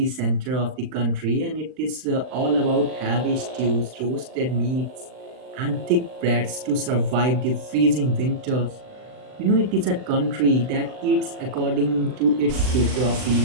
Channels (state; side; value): late; left; 39 ms